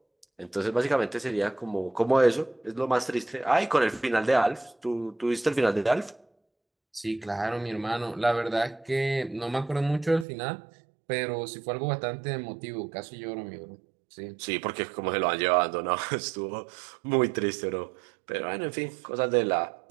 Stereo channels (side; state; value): left; drops out; at 10.2 s